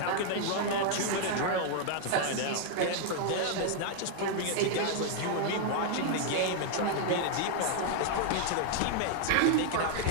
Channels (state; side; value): different; both; correlation 0.00